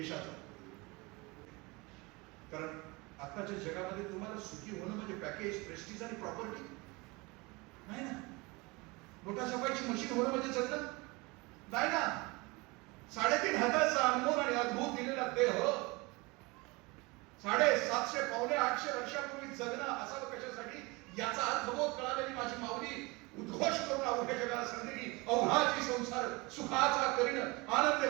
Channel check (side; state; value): left; quieter; 25.3 dB